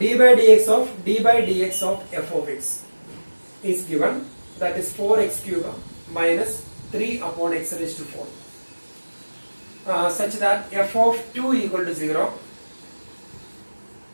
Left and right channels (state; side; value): inverted; both; correlation -1.00